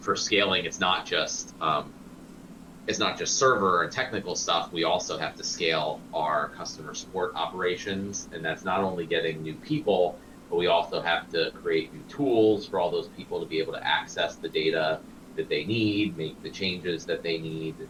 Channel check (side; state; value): both; identical; correlation 1.00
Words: for scaling, it's not just server and technical stuff. We also have to scale our customer support operations, and that's not only getting new people, but we also have to create new tools for all those people to be able to access the data that they need, make the changes that they need.